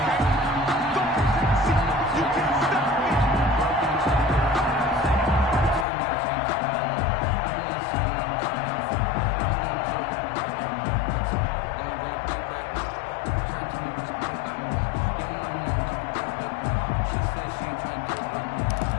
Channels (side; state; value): right; drops out; at 5.9 s